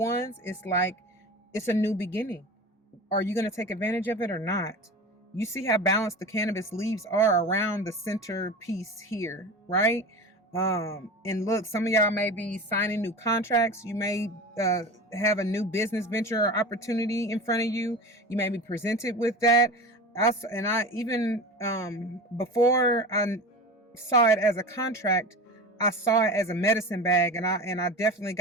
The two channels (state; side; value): normal; both; correlation 0.31